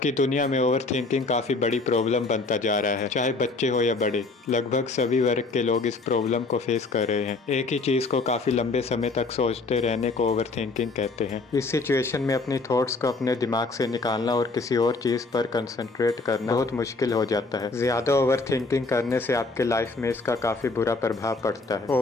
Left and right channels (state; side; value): quieter; right; 3.6 dB